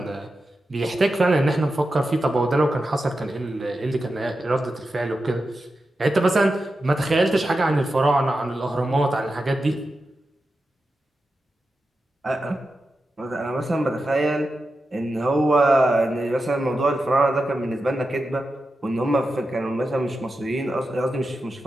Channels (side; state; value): both; normal; correlation 0.90